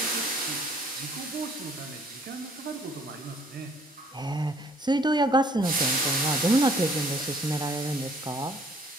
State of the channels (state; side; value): normal; both; correlation 0.60